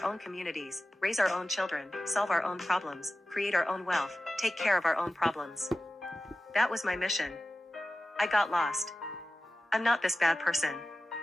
own communities, raise our own children, solve our own problems, create our own wealth, take care of our own problems. That was my mission. I got lost. I'm not this bad person.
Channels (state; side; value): normal; both; correlation 0.95